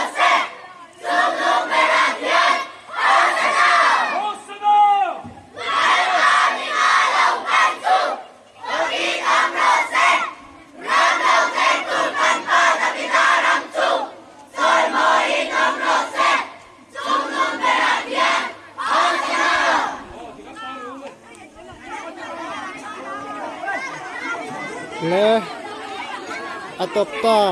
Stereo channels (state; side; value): identical; both; correlation 1.00